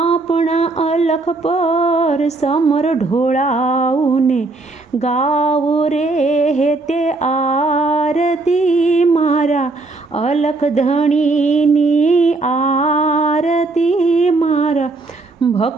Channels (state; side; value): quieter; left; 3.3 dB